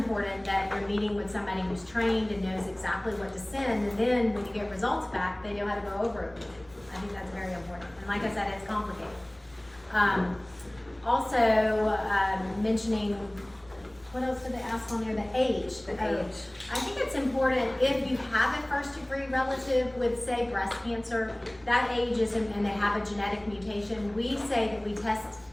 that you're meeting with somebody who's trained and knows exactly what to send, and then when you get results back, they know how to go over it with you. I think that's very important. And like I said, it's complicated. Also, mentioning, what else did they ask on there? The age. I think it's important if you have a first degree relative with, say, breast cancer, that age is, and they have a genetic mutation, we say that we test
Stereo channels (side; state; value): left; noise; rumble, 28 dB below the sound